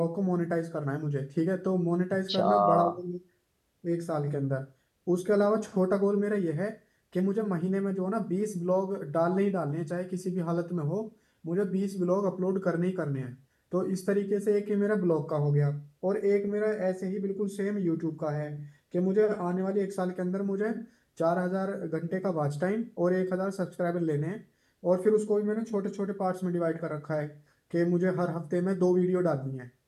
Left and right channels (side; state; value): both; identical; correlation 1.00